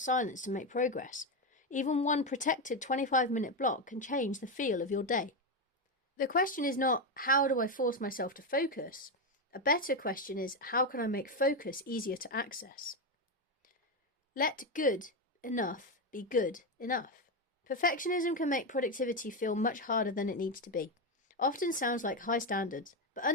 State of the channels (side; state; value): both; normal; correlation 0.10